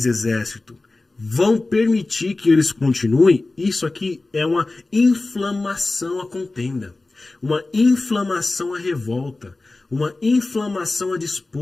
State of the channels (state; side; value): quieter; right; 3.2 dB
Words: exército, vão permitir que eles continuem? Isso aqui é uma inflamação à contenda, uma inflamação à revolta, uma inflamação à